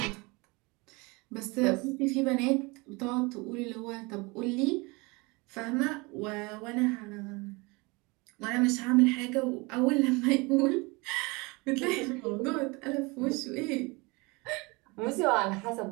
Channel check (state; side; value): quieter; left; 26.2 dB